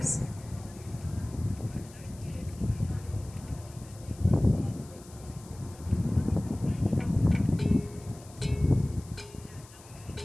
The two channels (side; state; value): left; noise; hiss, 21 dB below the sound